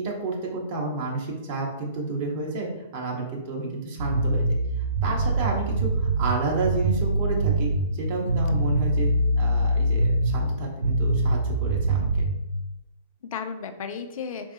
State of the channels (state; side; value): inverted; both; correlation -0.57